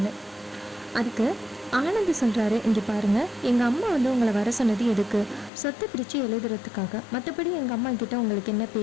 அதுக்கு ஆனந்த் சொல்கிறாரு, இங்கே பாருங்கள், எங்கள் அம்மா உங்களை வர சொன்னது எதுக்கு? சொத்தை பிரித்து எழுதுறதுக்காக, மற்றபடி எங்கள் அம்மா கிட்ட உங்களுக்கு என்ன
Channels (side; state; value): right; drops out; at 5.5 s